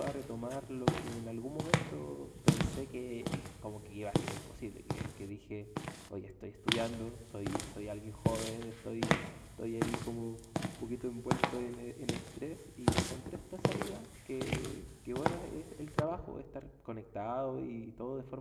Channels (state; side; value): identical; both; correlation 1.00